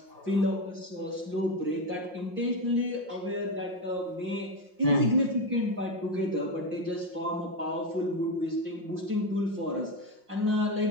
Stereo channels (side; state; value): left; late; 5.6 ms